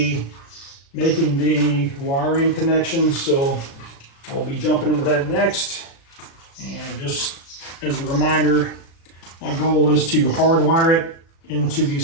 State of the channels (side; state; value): right; late; 36 ms